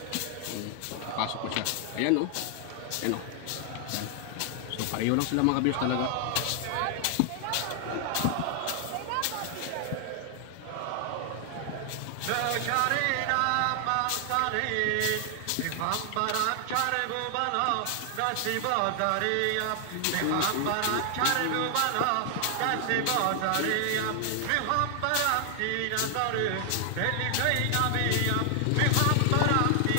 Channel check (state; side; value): different; both; correlation 0.00